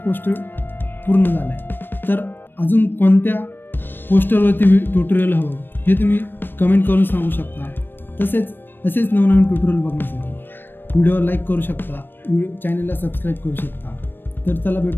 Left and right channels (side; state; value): right; late; 0.096 ms